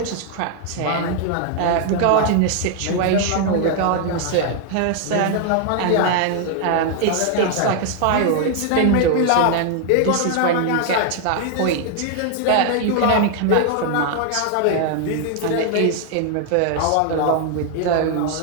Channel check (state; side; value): different; both; correlation 0.00